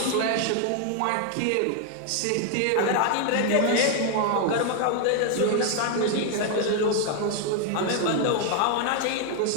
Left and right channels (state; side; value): different; both; correlation 0.00